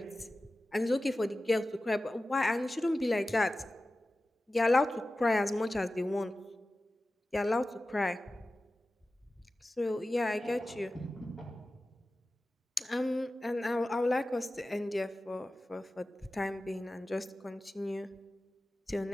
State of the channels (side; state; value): both; normal; correlation 0.95